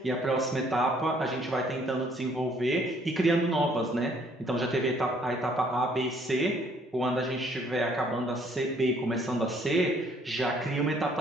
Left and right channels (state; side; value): normal; both; correlation 0.63